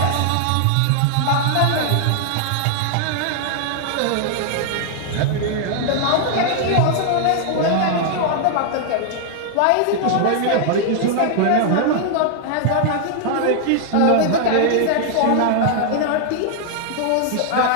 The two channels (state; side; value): different; both; correlation 0.00